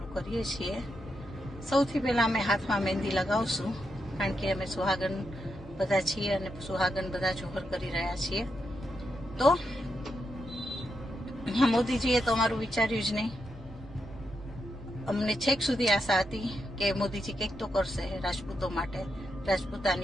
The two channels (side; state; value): both; normal; correlation 0.84